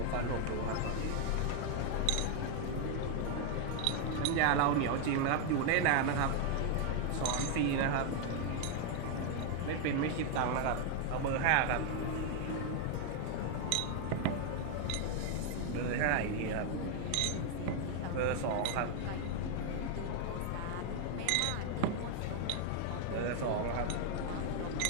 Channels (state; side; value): different; both; correlation 0.00